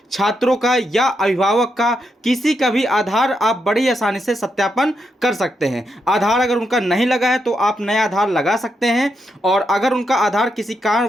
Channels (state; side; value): normal; both; correlation 0.82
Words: छात्रों का या अभिभावक का किसी का भी आधार आप बड़ी आसानी से सत्यापन कर सकते हैं। आधार अगर उनका नहीं लगा है तो आप नया आधार लगा सकते हैं, और अगर उनका आधार किसी